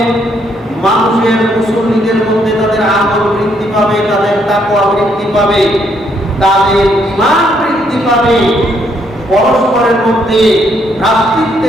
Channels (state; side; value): normal; both; correlation 0.71